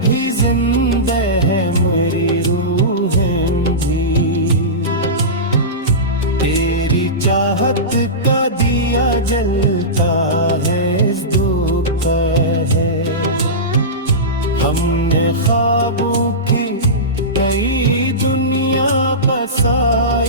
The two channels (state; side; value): normal; both; correlation -0.18